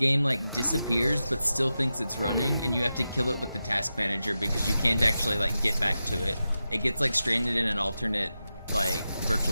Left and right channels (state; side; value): inverted; both; correlation -0.91